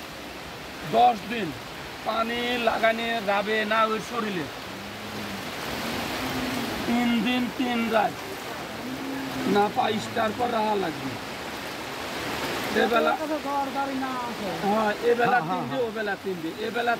10 দিন পানি লাগানি যাবে না ওই শরীরে, 3 দিন 3 রাত না পাইস্টার পর রাহা লাগবে। এবেলা হ্যাঁ, এবেলা 3 দিন, ওবেলা 3 দিন, এবেলা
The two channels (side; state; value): both; identical; correlation 1.00